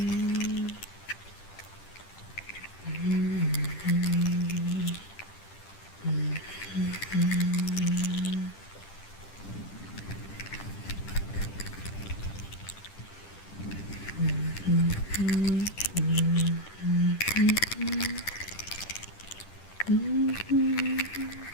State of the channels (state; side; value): late; right; 10 ms